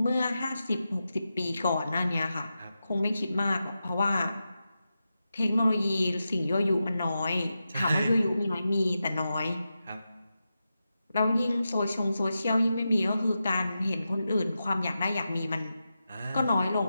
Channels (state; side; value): inverted; both; correlation -0.90